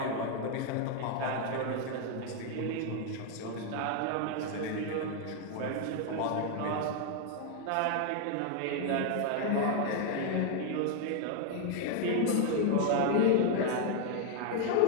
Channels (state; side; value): different; both; correlation 0.00